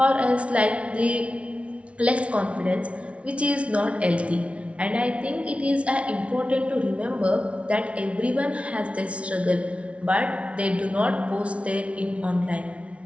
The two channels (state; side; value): late; left; 0.062 ms